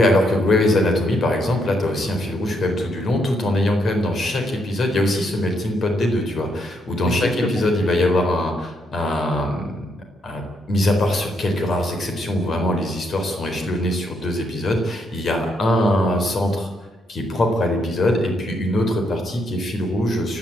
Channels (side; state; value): both; normal; correlation 0.76